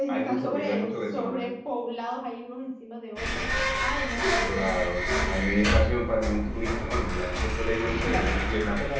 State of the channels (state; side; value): identical; both; correlation 1.00